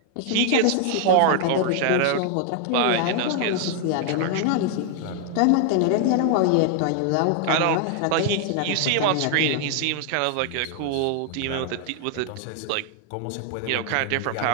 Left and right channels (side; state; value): both; different; correlation 0.00